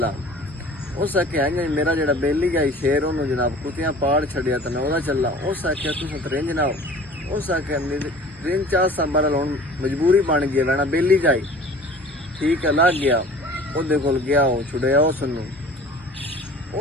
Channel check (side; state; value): both; normal; correlation 0.45